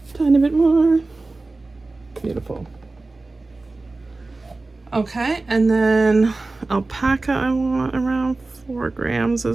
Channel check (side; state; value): left; quieter; 3.3 dB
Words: Tiny bit more. Beautiful. Okay, and then alpaca I want around 4 grams